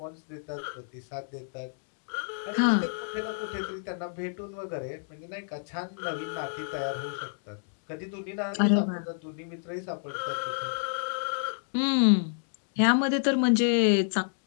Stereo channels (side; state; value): right; silent; digital silence